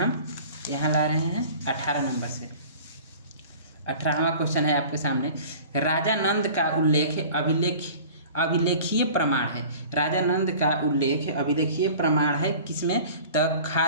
यहाँ ला रहे हैं 18 नंबर से। 18वां क्वेश्चन है आपके सामने, राजा नंद का उल्लेख अभिलेखीय प्रमाण है। राजा नंद का उल्लेख अभिलेखीय प्रमाण है किसमें? तो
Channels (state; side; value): inverted; both; correlation -0.43